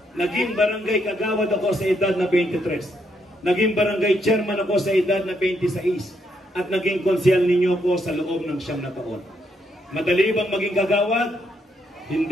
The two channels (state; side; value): normal; both; correlation 0.77